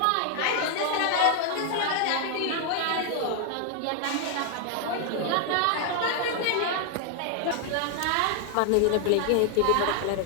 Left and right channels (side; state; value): both; different; correlation 0.00